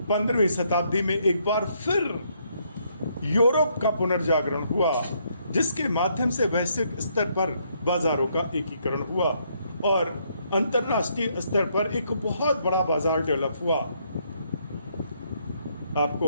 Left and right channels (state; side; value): inverted; both; correlation -0.72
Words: 15वीं शताब्दी में एक बार फिर यूरोप का पुनर्जागरण हुआ, जिसके माध्यम से वैश्विक स्तर पर बाजारों का एकीकरण हुआ और अंतरराष्ट्रीय स्तर पर एक बहुत बड़ा बाजार डेवलप हुआ।